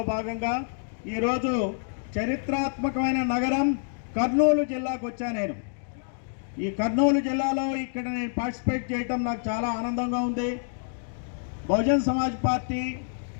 భాగంగా ఈరోజు చరిత్రాత్మకమైన నగరం కర్నూలు జిల్లాకు వచ్చా. నేను ఈ కర్నూలు జిల్లాలో ఇక్కడ నేను పార్టిసిపేట్ చేయటం నాకు చాలా ఆనందంగా ఉంది. బహుజన్ సమాజ్ పార్టీ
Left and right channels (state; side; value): silent; right; digital silence